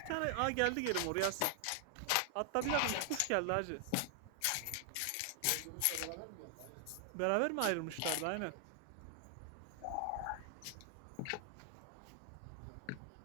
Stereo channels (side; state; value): both; different; correlation 0.00